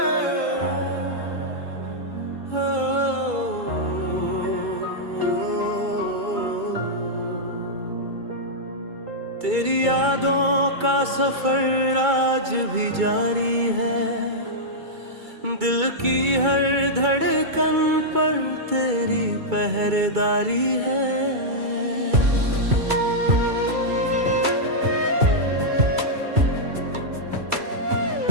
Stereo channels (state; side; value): late; left; 2.3 ms